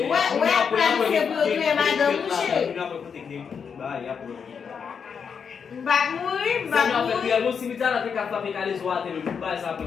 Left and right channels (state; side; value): quieter; right; 6.5 dB